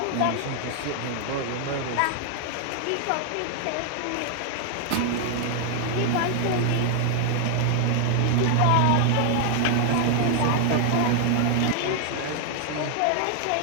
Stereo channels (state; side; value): different; both; correlation 0.00